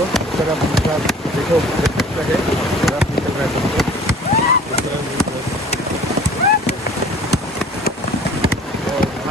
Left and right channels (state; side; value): normal; both; correlation 0.48